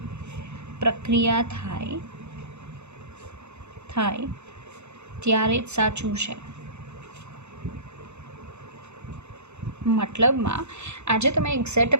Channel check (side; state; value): left; late; 0.81 ms